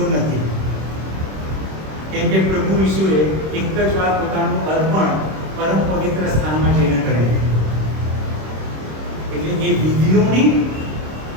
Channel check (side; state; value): left; late; 26 ms